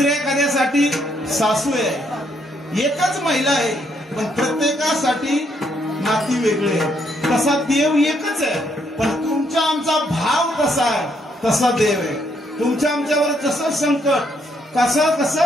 एखाद्यासाठी सासू आहे. एकच महिला आहे पण प्रत्येकासाठी नाती वेगळे आहेत. तसा देव एकच आहे, पण तुमचा आमचा भाव कसा आहे तसा देव आहे. तुमच्या आमच्यावर जसं संकट,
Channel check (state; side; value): normal; both; correlation 0.73